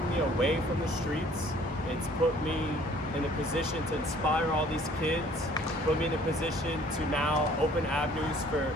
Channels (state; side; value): normal; both; correlation 0.56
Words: me away from the streets. It's put me in a position to inspire all these kids, put me in a position to now open avenues